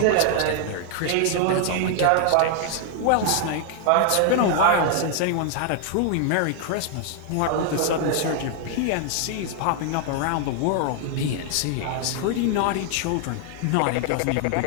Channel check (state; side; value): different; both; correlation 0.00